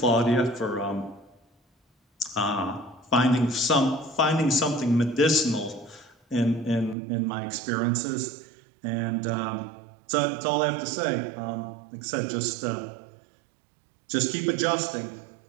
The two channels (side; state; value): left; drops out; at 7.0 s